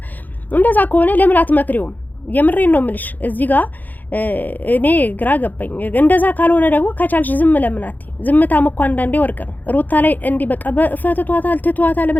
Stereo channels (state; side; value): late; right; 0.084 ms